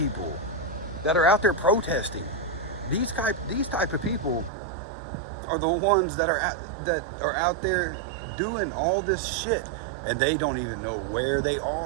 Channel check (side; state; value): left; drops out; at 4.5 s